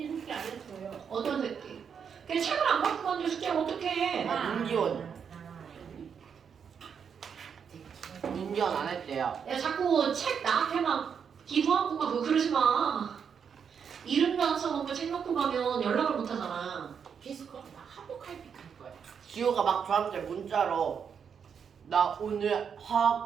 숙제 안 했어요. 어떤 새끼? 그냥 책을 안 갖고 갔는데 숙제를 어떻게 해? 문기원. 문기원 안 했대요. 야, 자꾸 책 나한테 막 기부하고 가고 그러지 마. 이름도 안 써놓고 책 놓고 가면 연락을 못 하잖아. 피스코 나 한복할픽 할 거야. 지호가 막 저한테 문자로 나 오늘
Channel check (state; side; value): quieter; left; 7.0 dB